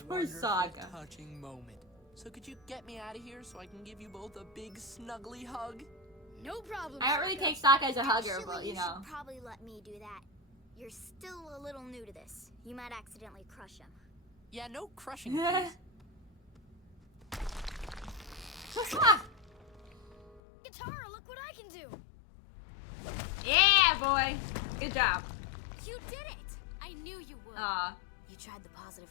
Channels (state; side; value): drops out; right; at 20.4 s